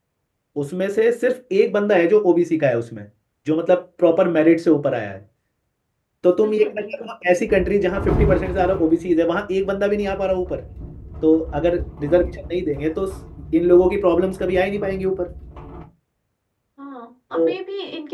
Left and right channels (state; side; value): identical; both; correlation 1.00